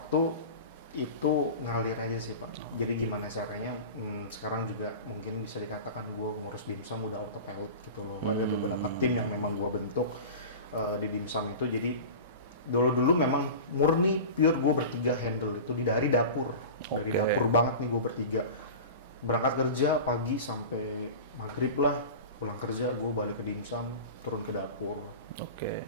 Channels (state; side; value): inverted; both; correlation -0.33